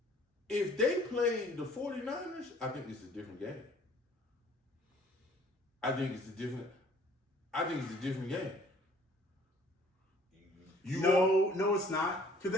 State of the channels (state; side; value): normal; both; correlation 0.56